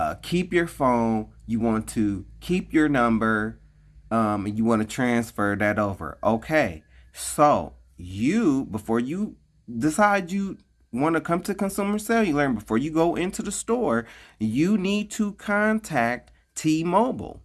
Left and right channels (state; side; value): identical; both; correlation 1.00